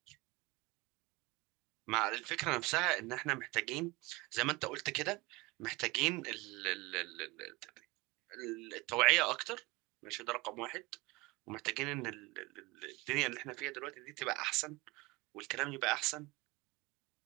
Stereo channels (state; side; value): quieter; left; 23.4 dB